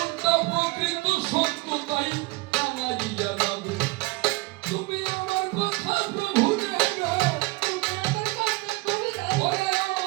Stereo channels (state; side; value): quieter; left; 24.0 dB